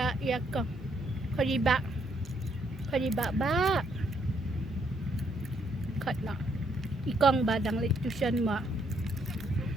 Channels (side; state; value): both; normal; correlation 0.72